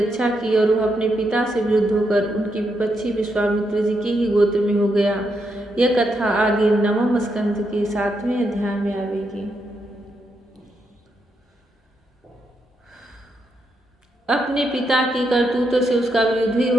की और वह अपने पिता से विरुद्ध होकर उनकी विपक्षी विश्वामित्र जी के ही गोत्र में हो गया। यह कथा आगे 9वें स्कंध के 7वें अध्याय में आवेगी। अपने पिता की करतूतों से उसका विरोध ही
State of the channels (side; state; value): both; normal; correlation 0.81